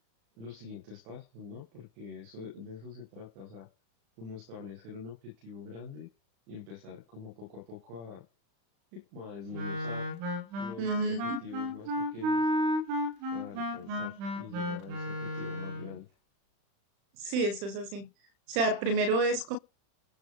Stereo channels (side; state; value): left; late; 35 ms